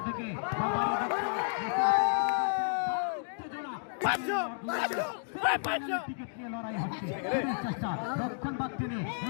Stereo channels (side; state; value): right; silent; digital silence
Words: থেকে টিকিট নিয়ে লড়াই হচ্ছে চেষ্টা রক্ষণ বাদ টেনে